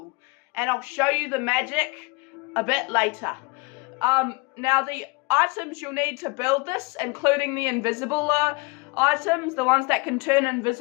and I'll show you the magic a bit later. Now the items you'll need to build this, including the invisible items, the ones that can turn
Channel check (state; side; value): quieter; right; 28.2 dB